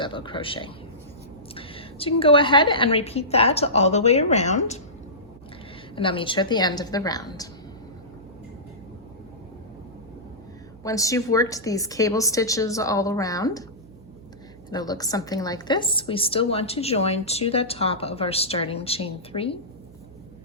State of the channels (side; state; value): right; noise; hum, 22 dB below the sound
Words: crochet. So you can go ahead and repeat that all the way around, and I'll meet you at the end of the round. Once you've worked these cable stitches all around, it'll look something like this. We still want to join to the top of our starting chain 3.